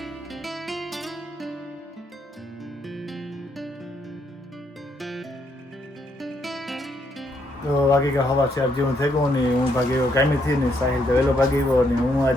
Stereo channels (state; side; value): normal; both; correlation 0.74